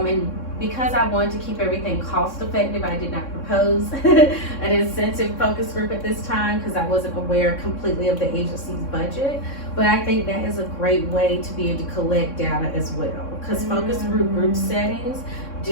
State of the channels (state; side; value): late; right; 3.6 ms